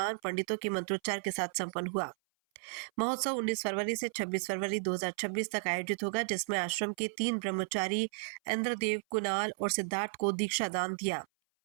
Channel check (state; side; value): silent; left; 55 dB below the other